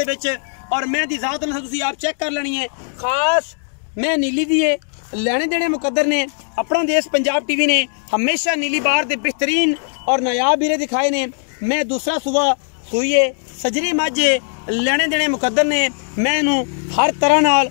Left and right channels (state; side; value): silent; right; digital silence